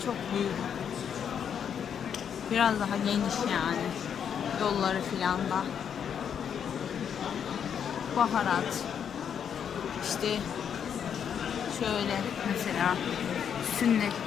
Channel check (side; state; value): right; quieter; 8.0 dB